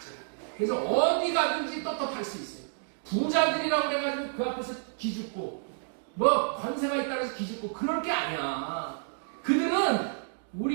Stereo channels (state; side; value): silent; left; digital silence